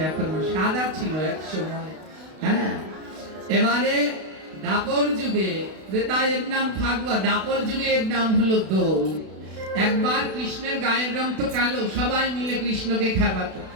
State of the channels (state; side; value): late; left; 32 ms